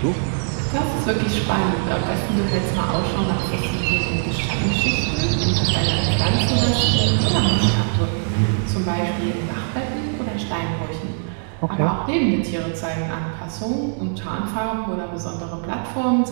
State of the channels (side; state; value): left; silent; digital silence